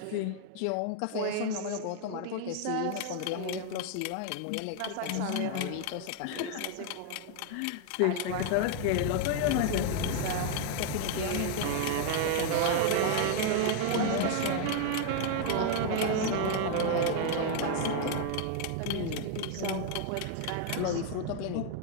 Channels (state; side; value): different; both; correlation 0.00